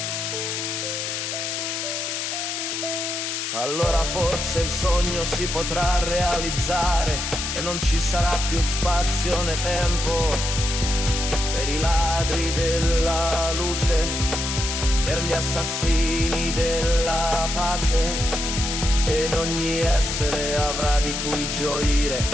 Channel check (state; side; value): noise; left; hiss, 3 dB below the sound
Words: Allora forse il sogno si potrà realizzare e non ci sarà più spazio né tempo per i ladri della luce, per gli assassini della pace. Ed ogni essere avrà di cui gioire